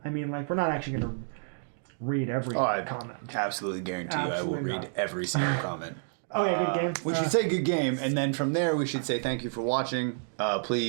I mean, like, we're not actually gonna read every I comment. absolutely guarantee Absolutely I will read not. every single comment. Oh yeah, good game. We should say good game, and then from there we should say thank you for watching.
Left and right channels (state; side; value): silent; left; digital silence